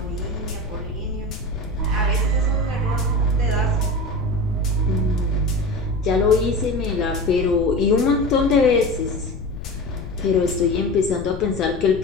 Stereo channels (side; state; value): left; noise; rumble, 10 dB below the sound